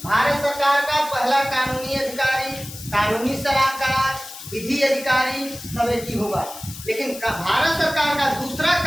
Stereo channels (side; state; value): left; noise; hiss, 13 dB below the sound